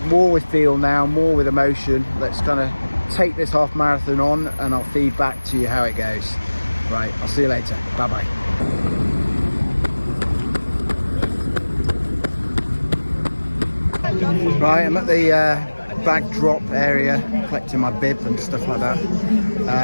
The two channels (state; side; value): inverted; both; correlation -1.00